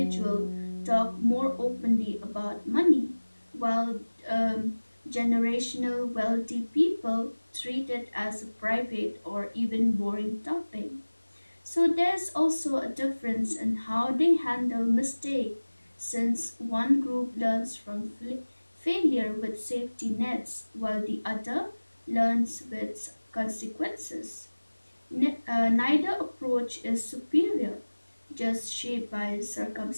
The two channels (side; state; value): both; inverted; correlation -1.00